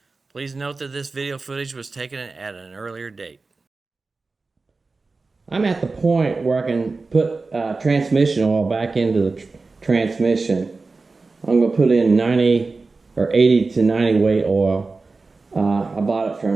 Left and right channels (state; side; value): quieter; left; 3.9 dB